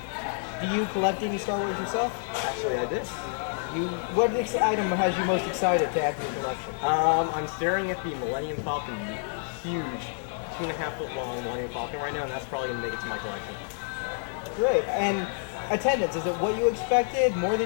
Do you collect any Star Wars yourself? Actually, I do. What item has you most excited to add to your collection? I'm staring at the Millennium Falcon, the huge 2.5-foot long Millennium Falcon right now, and that's probably going to make it to my collection. Great. And attendance, is it what you expected, more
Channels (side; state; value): right; silent; 59 dB below the other